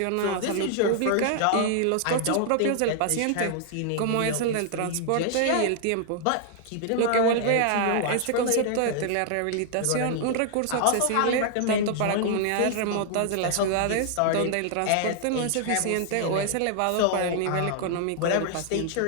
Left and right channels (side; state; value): both; different; correlation 0.00